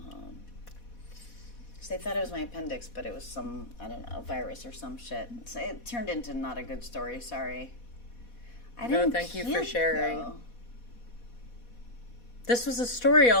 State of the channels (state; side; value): late; right; 4.1 ms